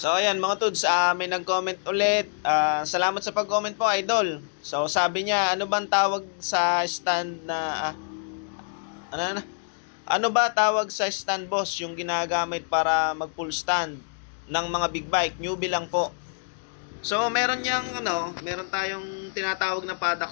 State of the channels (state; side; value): silent; right; digital silence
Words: ayan mga tuds, may nag-comment ulit. Salamat sa pag-comment po, idol. So sabi niya, ano bang tawag sa stand na ano na? Ano ba tawag sa stand boss yung ginagamit para mag full stand ng mga big bike? Newbie lang po. So meron yang meron tayong tinatawag na paddock